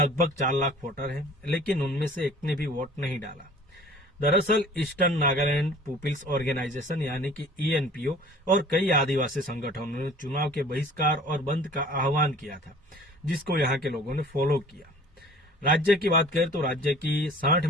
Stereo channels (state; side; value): normal; both; correlation 0.48